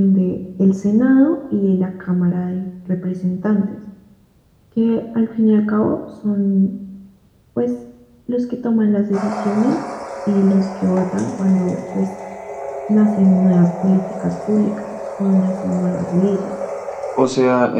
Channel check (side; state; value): both; identical; correlation 1.00